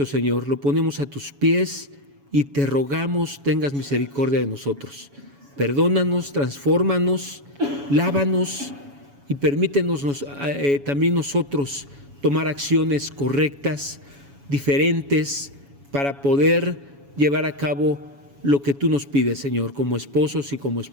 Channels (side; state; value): left; late; 7.1 ms